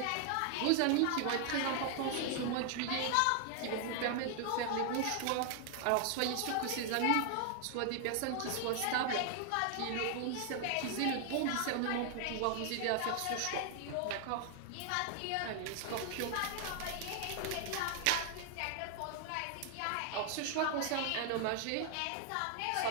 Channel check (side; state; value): both; different; correlation 0.00